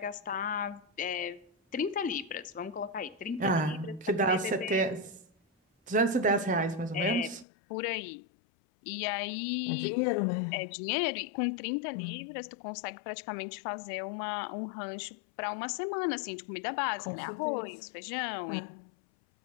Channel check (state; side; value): drops out; right; at 7.5 s